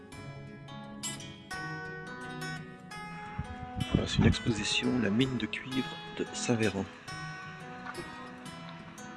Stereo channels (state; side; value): identical; both; correlation 1.00